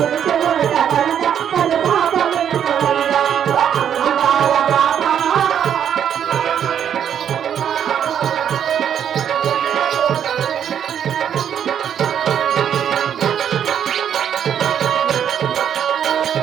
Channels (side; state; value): left; quieter; 9.0 dB